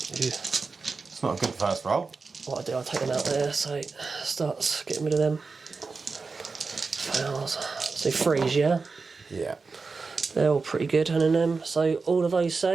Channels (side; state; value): left; quieter; 4.4 dB